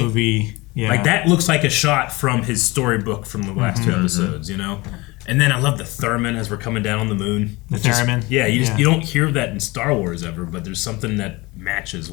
Yeah, like that looks like a shot from his storybook from the last two episodes. You know. And then I love the theremin as we're coming down on the moon. The theremin? Yeah, you don't hear that in Star Wars ever, but there's something that matches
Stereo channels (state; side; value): quieter; right; 23.1 dB